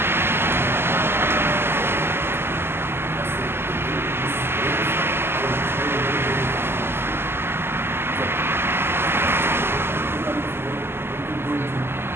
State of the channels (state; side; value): late; left; 0.11 ms